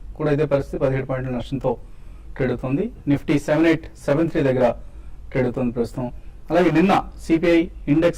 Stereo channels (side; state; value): both; identical; correlation 1.00